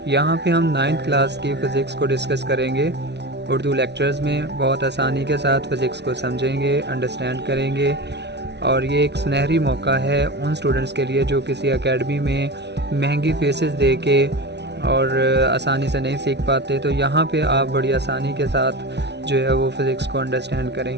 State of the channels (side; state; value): left; late; 0.50 ms